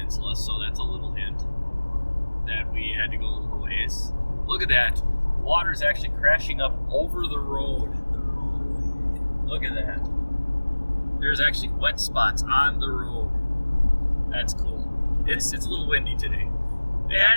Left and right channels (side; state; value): both; inverted; correlation -1.00